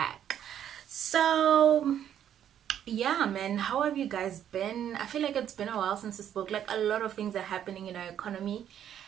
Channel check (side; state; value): left; quieter; 10.0 dB